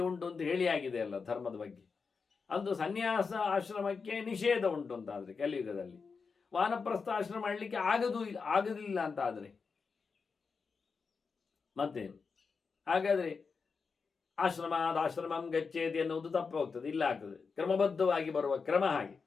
ಉಂಟು ಅಂತ ಹೇಳಿ ಆಗಿದೆ ಅಲ್ಲ ಧರ್ಮದ ಬಗ್ಗೆ. ಅಂದು ಸನ್ಯಾಸ ಆಶ್ರಮಕ್ಕೆ ನಿಷೇಧ ಉಂಟು ಅಂತಾದರೆ ಕಲಿಯುಗದಲ್ಲಿ, ವಾನಪ್ರಸ್ಥ ಆಶ್ರಮ ಮಾಡಲಿಕ್ಕೆ ಆಗುದಿಲ್ಲ ಅಂತ ಆದರೆ ಮತ್ತೇನು? ಹಾಗಾದರೆ ಆಶ್ರಮಂ ಗಚ್ಚೇತಿ ಎನ್ನುವುದು ತಪ್ಪು ಹೋಗ್ತದೆ, ಇಲ್ಲ ಆಗ್ತದೆ. ಕ್ರಮಬದ್ಧವಾಗಿ ಬರುವ ಕ್ರಮ ಹಾಗೆ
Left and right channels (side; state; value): right; quieter; 5.1 dB